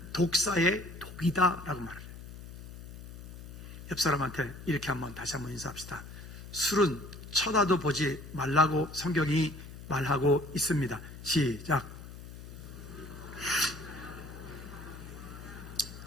독사의 독이다 라고 말해요. 옆 사람한테 이렇게 다시 한번 인사합시다. 술은 쳐다도 보지 말라고 성경이 말하고 있습니다. 시작.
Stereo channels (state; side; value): noise; left; hum, 13 dB below the sound